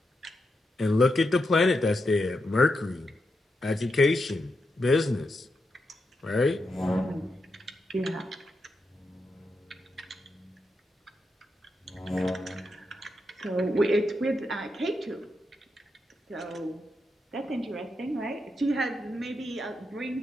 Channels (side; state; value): both; normal; correlation 0.85